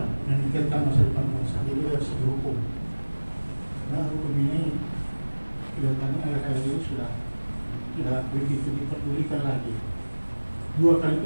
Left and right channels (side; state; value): both; inverted; correlation -1.00